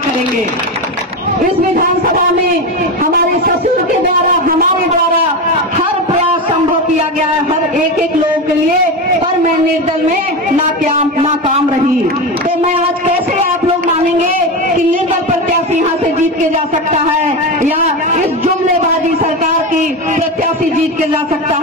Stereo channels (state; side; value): normal; both; correlation 0.19